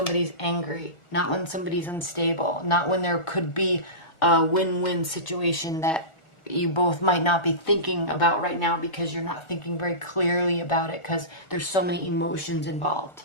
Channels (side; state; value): right; late; 1.4 ms